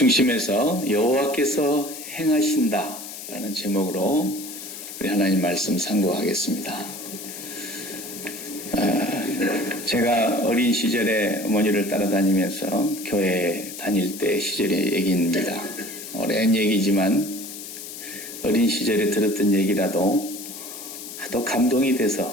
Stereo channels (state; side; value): noise; left; hiss, 11 dB below the sound